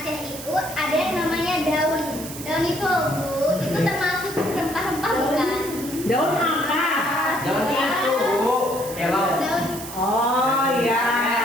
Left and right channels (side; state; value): right; noise; hiss, 11 dB below the sound